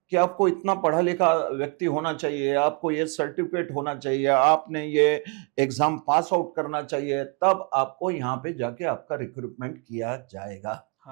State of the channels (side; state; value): left; quieter; 33.0 dB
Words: कि आपको इतना पढ़ा लिखा व्यक्ति होना चाहिए, आपको ये सर्टिफिकेट होना चाहिए, आपने ये एग्जाम पास आउट करना चाहिए, तब आपको यहाँ पे जाके आपका रिक्रूटमेंट किया जाएगा।